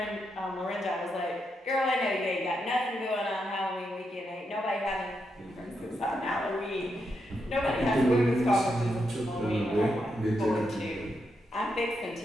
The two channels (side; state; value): both; normal; correlation 0.83